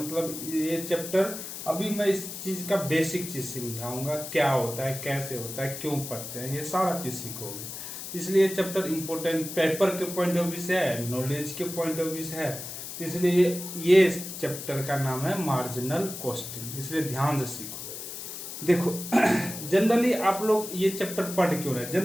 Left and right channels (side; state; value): left; noise; hiss, 9 dB below the sound